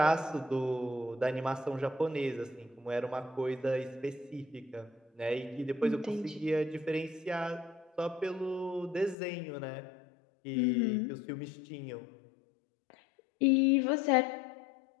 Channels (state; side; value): drops out; right; at 9.2 s